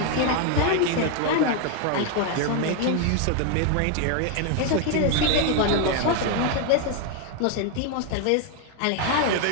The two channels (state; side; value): different; both; correlation 0.01